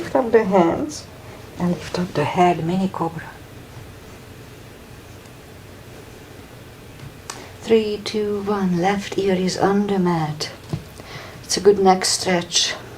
up the hands and lift up the head, mini cobra. 3, 2, 1. Left ear is on the mat. It's a good neck stretch.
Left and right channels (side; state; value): both; identical; correlation 1.00